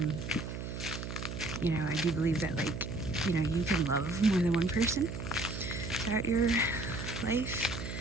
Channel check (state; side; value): noise; right; hum, 6 dB below the sound